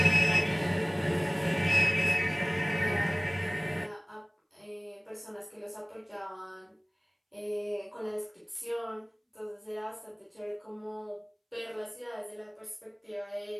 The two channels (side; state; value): both; identical; correlation 1.00